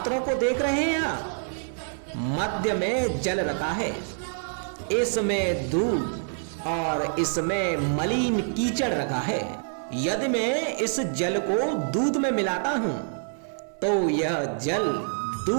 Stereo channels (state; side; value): silent; left; 61 dB below the other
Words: को देख रहे हैं आप? मध्य में जल रखा है, इसमें दूध और इसमें मलिन कीचड़ रखा है। यदि मैं इस जल को दूध में मिलाता हूं तो यह जल